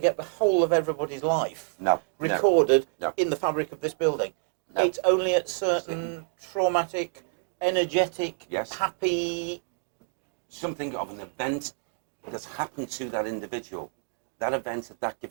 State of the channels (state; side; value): silent; left; 59 dB below the other